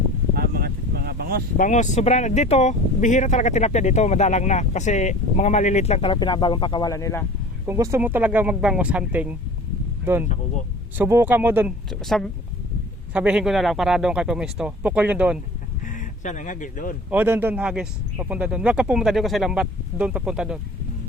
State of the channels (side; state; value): both; normal; correlation 0.43